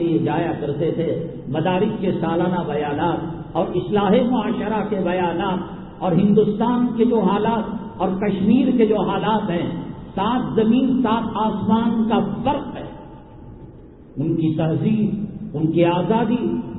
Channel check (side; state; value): both; identical; correlation 1.00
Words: جایا کرتے تھے، مدارس کے سالانہ بیانات اور اصلاح معاشرہ کے بیانات، اور ہندوستان کے جو حالات اور کشمیر کے جو حالات ہیں، 7 زمین 7 آسمان کا فرق ہے۔ ان کی تہذیب، ان کی آزادی،